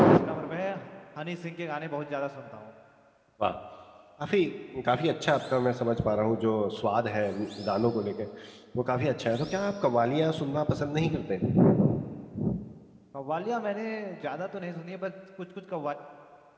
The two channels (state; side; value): identical; both; correlation 1.00